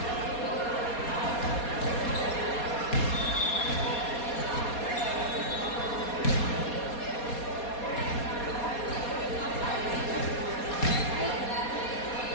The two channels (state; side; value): late; right; 4.2 ms